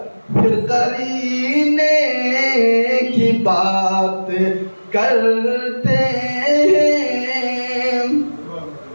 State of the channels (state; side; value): inverted; both; correlation -1.00